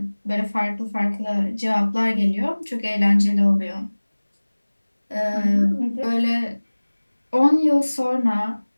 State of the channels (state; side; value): inverted; both; correlation -1.00